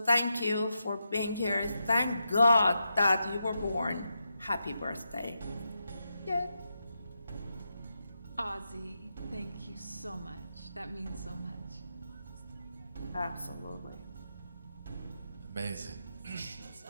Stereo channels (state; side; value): inverted; both; correlation -0.86